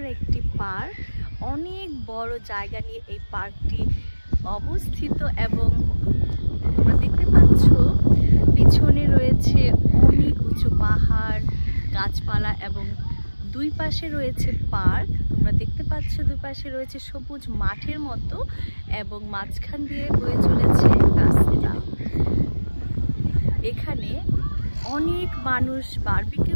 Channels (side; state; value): both; inverted; correlation -1.00